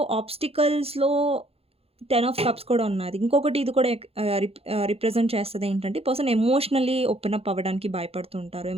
ఆబ్స్టికల్స్‌లో 10 ఆఫ్ కప్స్ కూడా ఉన్నది. ఇంకొకటి ఇది కూడా రిప్రజెంట్ చేస్తది ఏంటంటే, పర్సన్ ఎమోషనల్లీ ఓపెన్ అప్ అవ్వడానికి భయపడుతూ ఉంటారు.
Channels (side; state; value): left; late; 0.29 ms